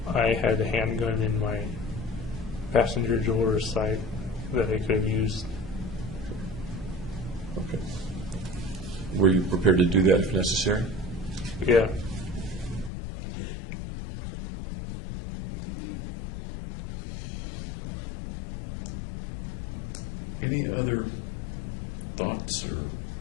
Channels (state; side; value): drops out; right; at 12.9 s